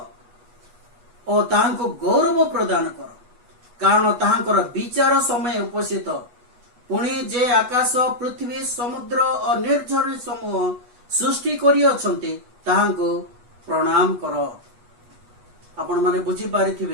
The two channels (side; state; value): left; late; 8.2 ms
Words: और ताहांको गौरव प्रदान कर, कारण ताहांकर विचार समय उपस्थित। पुणी जे आकाश पृथ्वी समुद्र और निर्झर समूह सृष्टि करि अछन्ते ताहांको प्रणाम कर। आपण माने बुझी